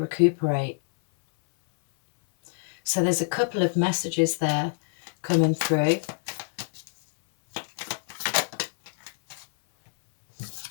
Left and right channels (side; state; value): right; silent; 61 dB below the other